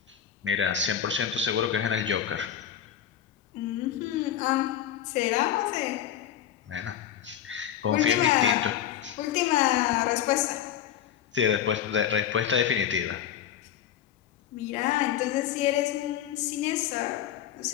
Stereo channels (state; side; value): quieter; right; 10.1 dB